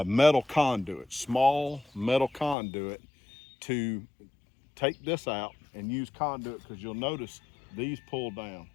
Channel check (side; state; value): right; drops out; at 2.6 s